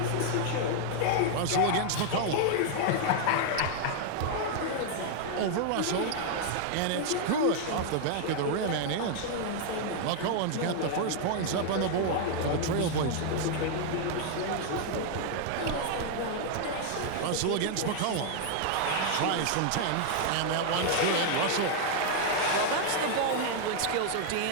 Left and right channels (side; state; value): both; different; correlation 0.00